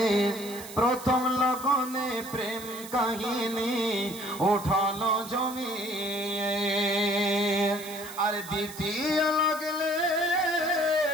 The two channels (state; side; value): noise; right; hiss, 14 dB below the sound